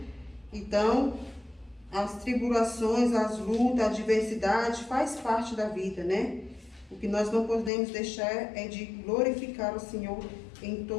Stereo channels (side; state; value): right; drops out; at 7.7 s